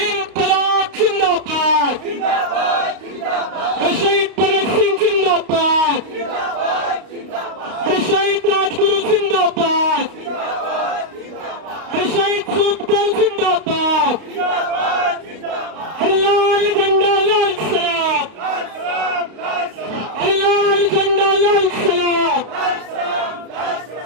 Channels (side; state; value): left; late; 32 ms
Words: जिंदाबाद, शहीद भगत सिंह जिंदाबाद, शहीद राजगुरु जिंदाबाद, शहीद सुखदेव जिंदाबाद, लाल झंडा लाल सलाम, लाल झंडा लाल सलाम,